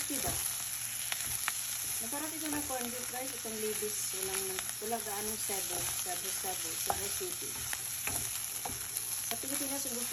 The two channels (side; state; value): both; identical; correlation 1.00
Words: ba? Masarap ito na corn beef guys, itong libis, walang gaanong Cebu City. Sa Pilipinas,